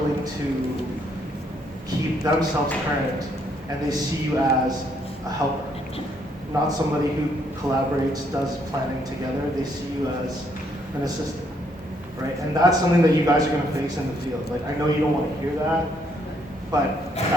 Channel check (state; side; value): normal; both; correlation 0.71